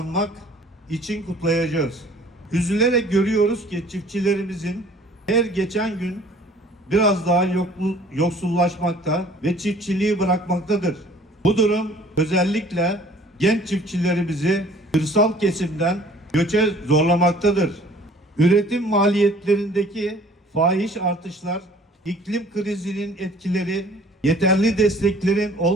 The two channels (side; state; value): both; normal; correlation 0.53